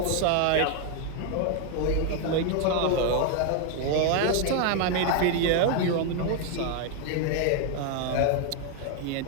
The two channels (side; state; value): both; different; correlation 0.01